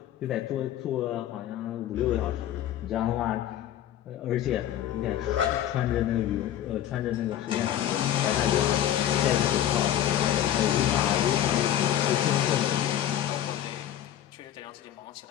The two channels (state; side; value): quieter; right; 11.5 dB